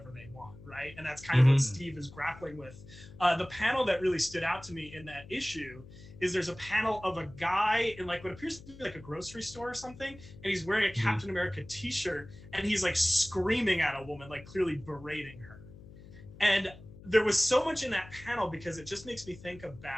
they want, right? And that's kind of what Steve is grappling with. The panel that really stood out to me in that issue is there's a panel of a guy in like what appears to be like a grocery store or something, and he's wearing a Captain America t-shirt, and he's like screaming at a woman, like clearly berating her. And there was so much in that panel, because it just makes me think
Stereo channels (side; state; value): left; noise; hum, 18 dB below the sound